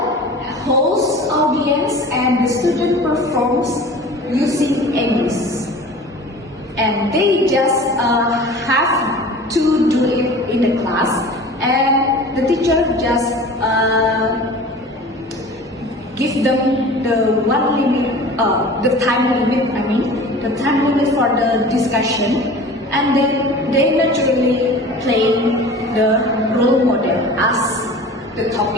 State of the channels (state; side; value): normal; both; correlation 0.40